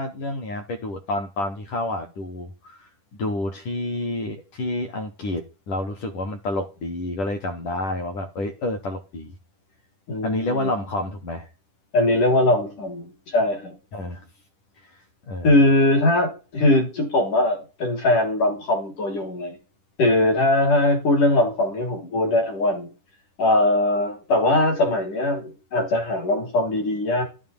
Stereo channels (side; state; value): right; late; 10 ms